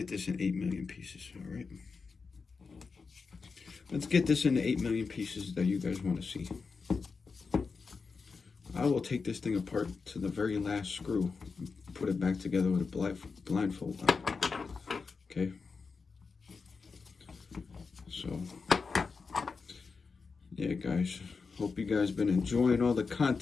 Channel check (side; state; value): right; quieter; 4.8 dB